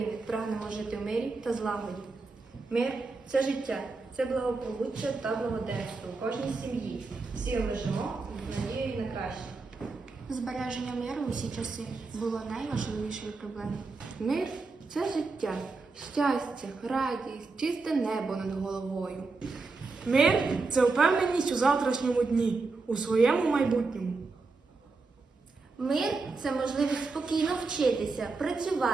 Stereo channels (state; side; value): quieter; left; 3.9 dB